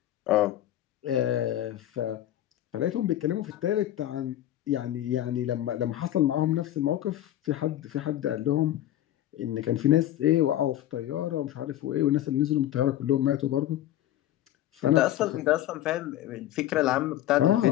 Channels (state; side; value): quieter; right; 13.0 dB